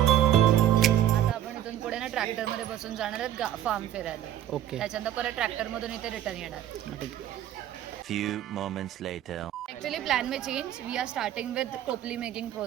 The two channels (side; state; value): left; quieter; 11.6 dB